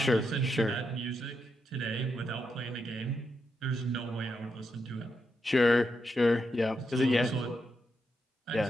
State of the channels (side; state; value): both; normal; correlation 0.83